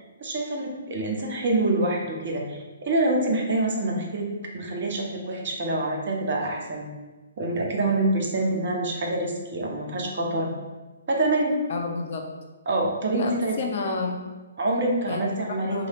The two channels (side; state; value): both; inverted; correlation -0.50